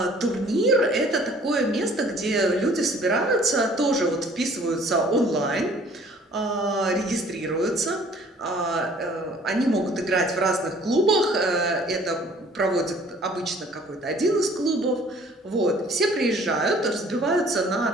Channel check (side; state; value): both; normal; correlation 0.54